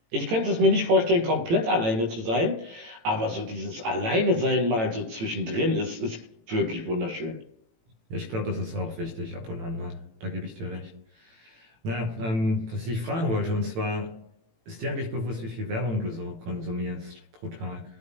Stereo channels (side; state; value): left; late; 18 ms